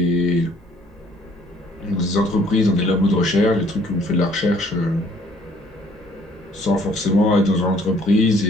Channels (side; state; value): both; normal; correlation 0.60